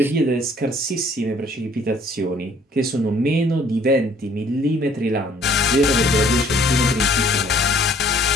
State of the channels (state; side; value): normal; both; correlation 0.59